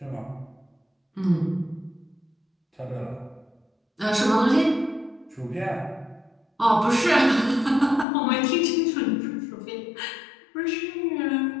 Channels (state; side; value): drops out; right; at 8.1 s